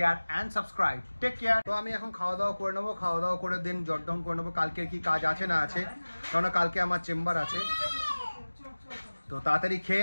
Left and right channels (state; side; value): inverted; both; correlation -1.00